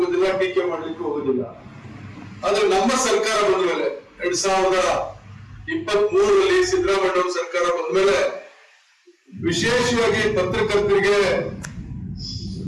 ಟೀಕೆ ಮಾಡ್ಲಿಕ್ಕೆ ಹೋಗೋದಿಲ್ಲ. ಆದ್ರೆ ನಮ್ಮ ಸರ್ಕಾರ ಬಂದ ಮೇಲೆ 2023ರಲ್ಲಿ ಸಿದ್ದರಾಮಯ್ಯ ಸರ್ಕಾರ ಬಂದ ಮೇಲೆ ವಿಶೇಷವಾಗಿ ಪತ್ರಕರ್ತರಿಗೆ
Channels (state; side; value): identical; both; correlation 1.00